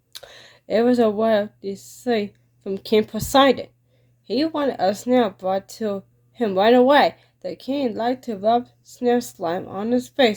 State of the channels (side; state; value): both; identical; correlation 1.00